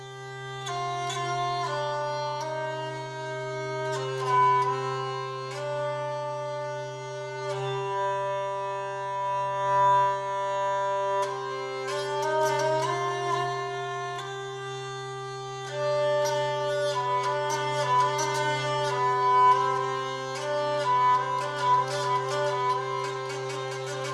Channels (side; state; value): both; identical; correlation 1.00